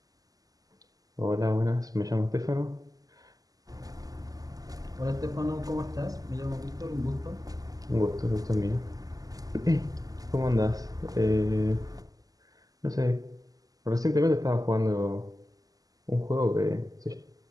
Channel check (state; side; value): late; left; 0.17 ms